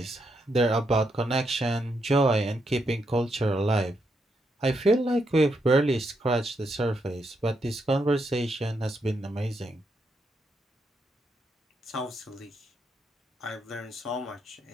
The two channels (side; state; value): both; normal; correlation 0.80